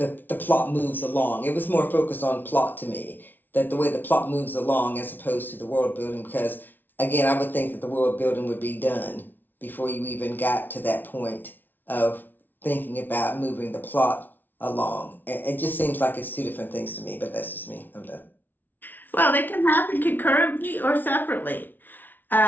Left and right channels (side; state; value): right; late; 0.089 ms